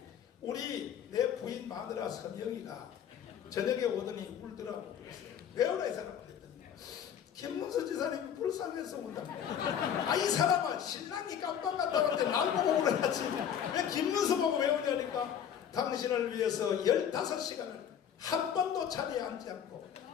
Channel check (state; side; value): quieter; right; 8.9 dB